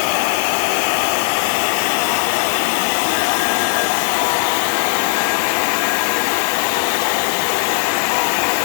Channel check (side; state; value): right; silent; 65 dB below the other